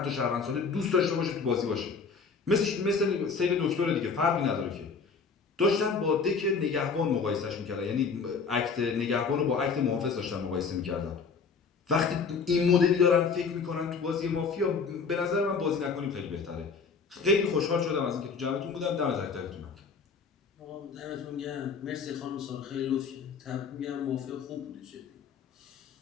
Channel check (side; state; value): right; quieter; 5.2 dB